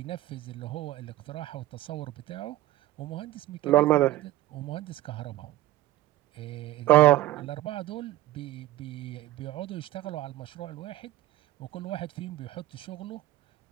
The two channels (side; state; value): left; quieter; 15.4 dB